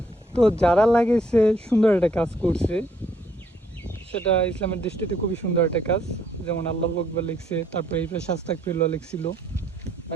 তো যারা লাগিয়েছে সুন্দর একটা কাজ করছে, সেটা ইসলামের দৃষ্টিতে খুবই সুন্দর একটা কাজ। যেমন আল্লাহু আকবার লিখছে, তারপরে এই পাশে আস্তাগফিরুল্লাহ লিখছিল,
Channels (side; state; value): both; normal; correlation 0.67